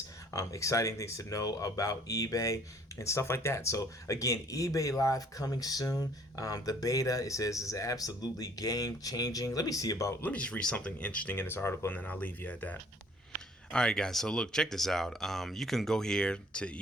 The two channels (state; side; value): normal; both; correlation 0.58